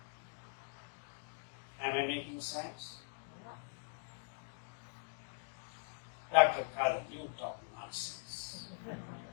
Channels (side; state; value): right; silent; digital silence